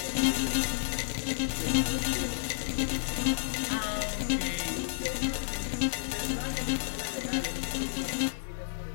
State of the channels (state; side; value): silent; right; digital silence